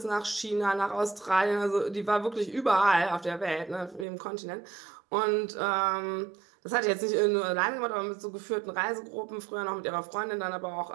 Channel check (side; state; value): left; drops out; at 4.0 s